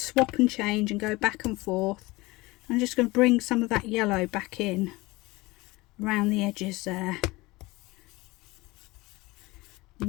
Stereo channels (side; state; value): right; quieter; 21.9 dB